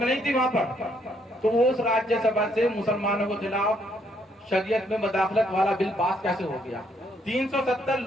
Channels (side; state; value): both; normal; correlation 0.71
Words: नहीं थी वहां पर। तो वो उस राज्यसभा से मुसलमानों के खिलाफ शरीयत में मदाखलत वाला बिल पास कैसे हो गया? 370